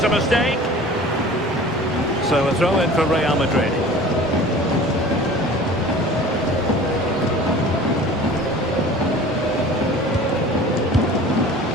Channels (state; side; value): normal; both; correlation 0.43